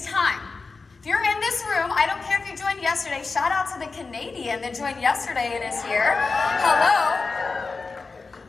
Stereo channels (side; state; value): right; quieter; 4.2 dB